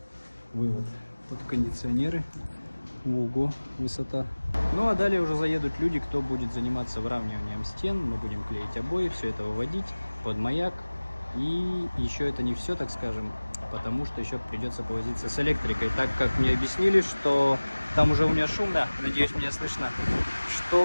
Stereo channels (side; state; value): both; inverted; correlation -1.00